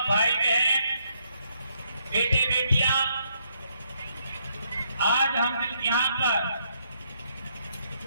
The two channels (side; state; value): both; inverted; correlation -0.74